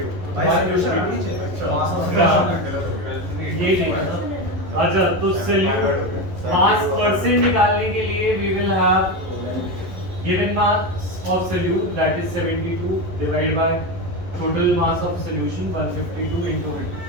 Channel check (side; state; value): left; late; 11 ms